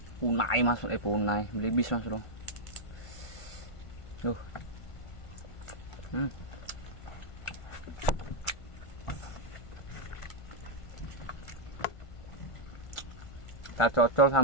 Punai Mas, punai belibis Mas Bro. Kita cocol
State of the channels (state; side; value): late; right; 1.5 ms